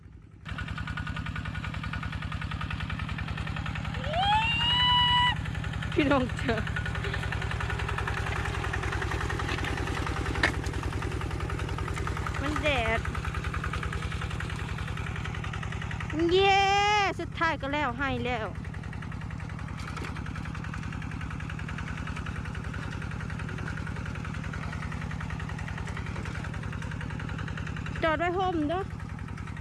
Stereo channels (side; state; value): both; identical; correlation 1.00